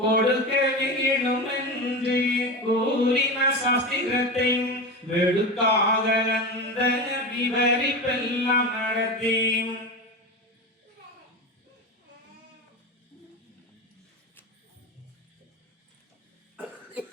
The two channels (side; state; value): both; normal; correlation 0.23